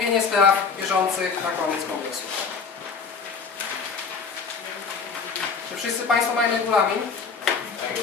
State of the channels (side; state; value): right; quieter; 5.3 dB